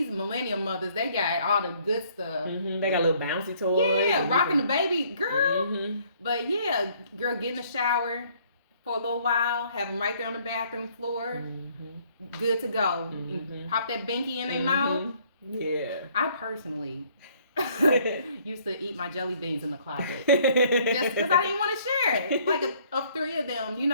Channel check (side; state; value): both; inverted; correlation -0.62